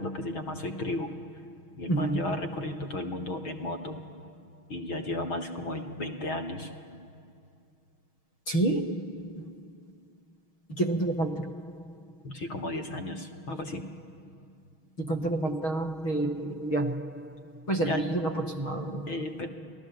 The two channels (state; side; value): late; right; 6.3 ms